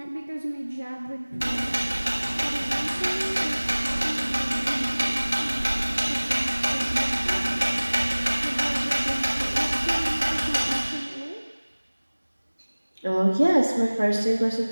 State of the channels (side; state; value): both; inverted; correlation -1.00